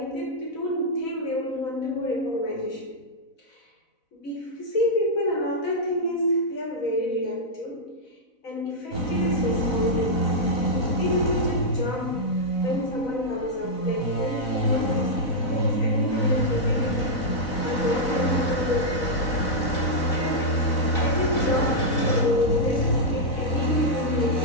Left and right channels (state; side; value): late; right; 4.0 ms